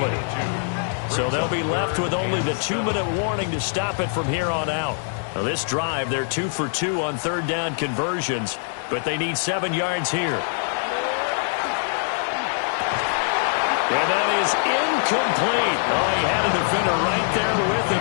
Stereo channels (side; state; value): right; silent; 62 dB below the other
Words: So they'll be left with only the 2-minute warning to stop it from here on out. Now this drive, they're 2 for 2 on third down conversions, but they need 7 yards here. And that is incomplete. Oh, he had a defender right there with him